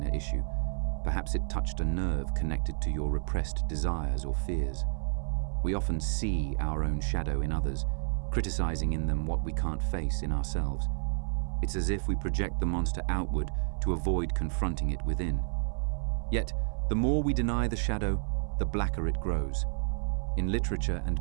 issue. Perhaps it touched a nerve connected to your repressed desires or fears. We often see our own shadow in others, criticizing in them what we can't face in ourselves. It's as if we project the monster outward to avoid confronting it within. Yet, the more we deny the shadow, the blacker it grows. In literature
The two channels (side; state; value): left; silent; 57 dB below the other